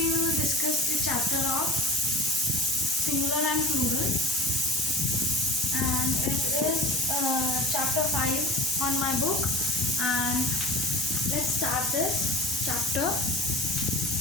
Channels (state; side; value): normal; both; correlation 0.37